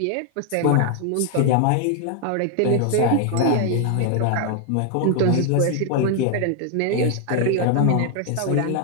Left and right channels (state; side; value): different; both; correlation 0.00